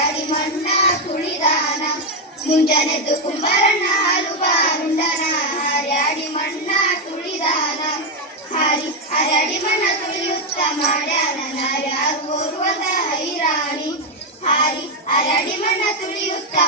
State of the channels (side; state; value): both; normal; correlation 0.05